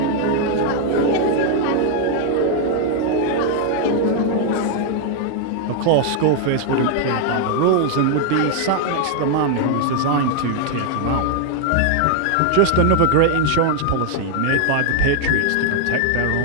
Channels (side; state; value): both; different; correlation 0.00